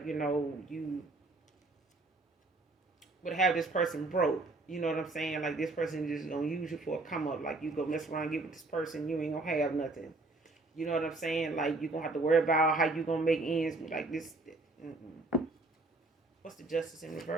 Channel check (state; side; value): quieter; left; 3.1 dB